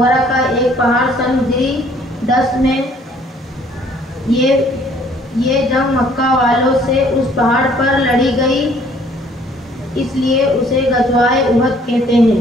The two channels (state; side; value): normal; both; correlation 0.59